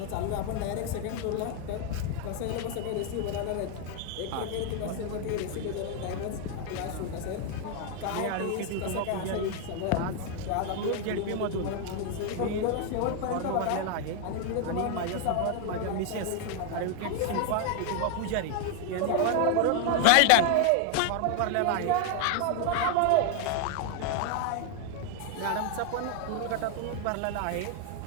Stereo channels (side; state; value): both; different; correlation 0.00